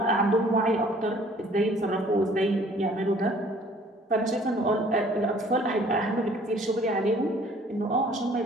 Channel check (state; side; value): normal; both; correlation 0.55